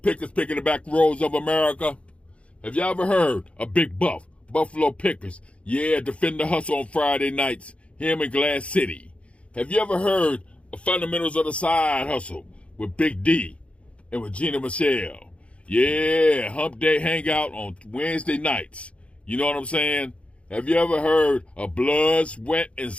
picking the back roads of America? Have y'all ever heard of Big Buff, Buffalo Pickers? Yeah, defend the hustle on Friday nights, him in Glass City. Have you ever heard of Fundamentals of the Side Hustle with Big D and Regina Michelle? Yeah, Hump Day Hangout on Wednesday nights. You know what I'm saying? Have you ever heard of Blood, Sweat, and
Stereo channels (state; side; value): late; right; 0.061 ms